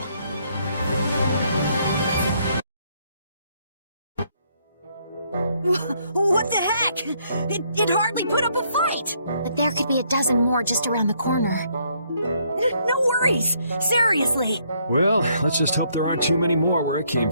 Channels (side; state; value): both; inverted; correlation -0.70